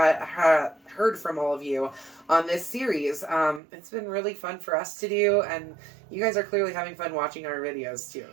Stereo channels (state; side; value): drops out; left; at 3.6 s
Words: from all of you on this series. It's been really fun for us to do, and you guys are clearly having fun watching our videos too.